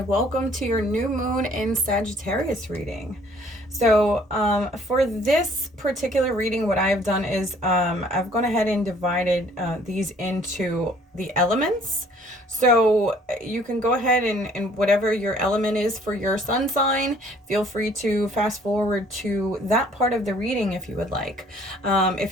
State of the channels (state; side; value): normal; both; correlation 0.58